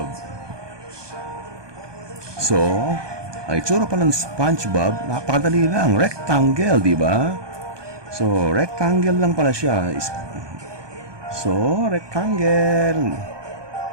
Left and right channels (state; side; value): late; left; 1.2 ms